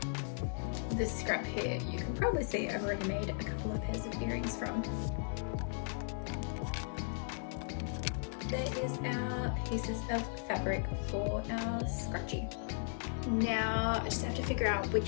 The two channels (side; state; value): right; silent; 53 dB below the other